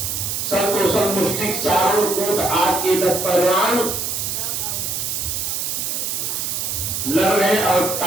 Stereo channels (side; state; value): right; noise; hiss, 2 dB below the sound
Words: संतोषण मुष्टिक चारों कोट आग के 10 पहलवान लड़ रहे और